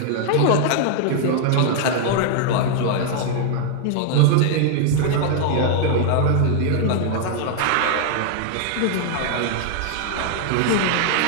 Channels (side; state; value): both; different; correlation 0.00